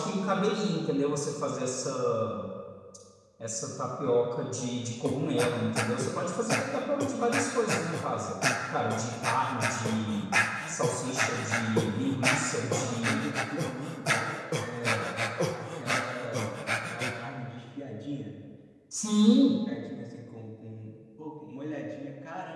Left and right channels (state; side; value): identical; both; correlation 1.00